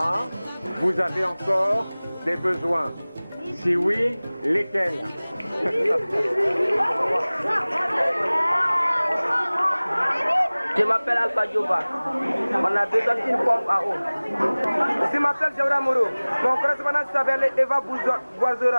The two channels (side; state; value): both; inverted; correlation -1.00